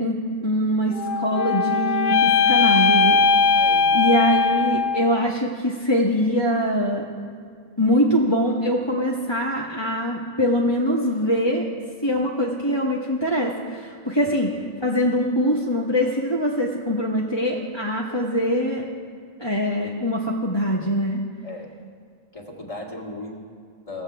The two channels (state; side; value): late; right; 1.2 ms